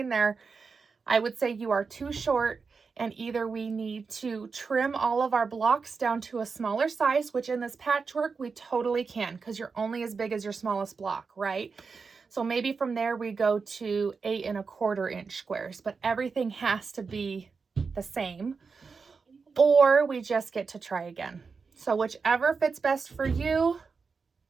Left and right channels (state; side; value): quieter; left; 5.0 dB